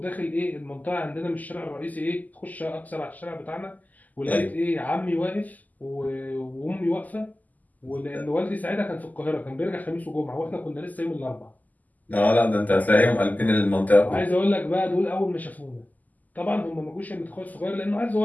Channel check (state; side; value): late; right; 0.080 ms